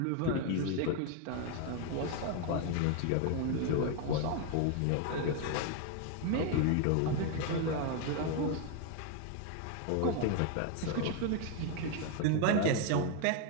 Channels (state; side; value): different; both; correlation 0.01